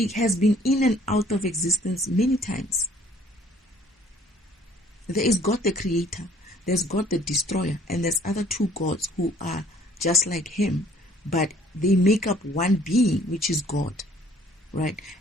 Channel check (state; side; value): normal; both; correlation 0.57